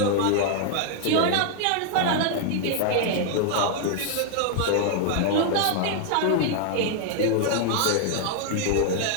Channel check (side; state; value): both; different; correlation 0.00